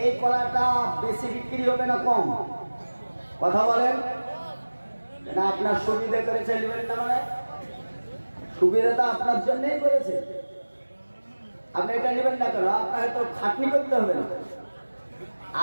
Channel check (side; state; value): both; inverted; correlation -1.00